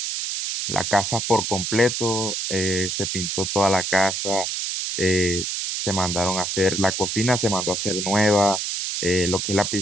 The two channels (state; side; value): noise; right; hiss, 2 dB below the sound